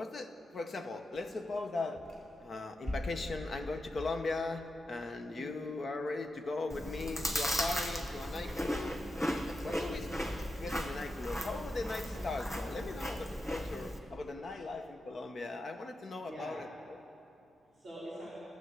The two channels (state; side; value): normal; both; correlation 0.88